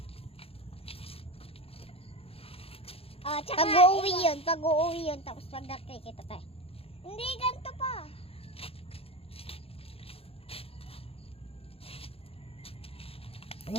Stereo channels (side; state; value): right; late; 0.28 ms